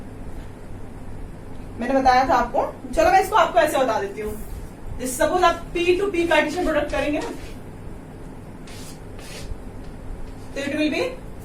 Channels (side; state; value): both; identical; correlation 1.00